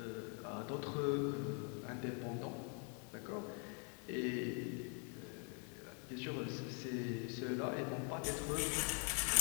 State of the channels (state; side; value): quieter; right; 38.3 dB